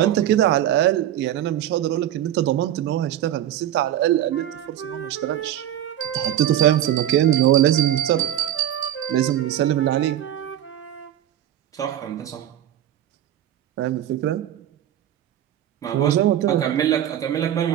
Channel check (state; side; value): quieter; left; 11.8 dB